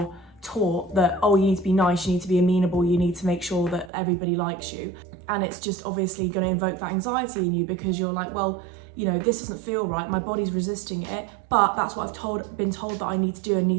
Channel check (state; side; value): drops out; left; at 3.9 s